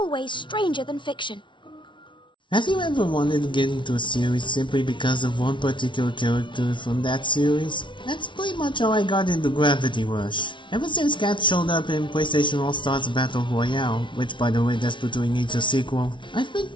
stranger than fiction. Have you ever wanted to get into a series simply because of one particular character from that series? That's pretty much how I got into Gravity Rush. Ever since Cat showed up in PlayStation All-Stars Battle Royale, which by the way desperately needs a sequel, I've been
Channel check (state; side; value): late; right; 0.24 ms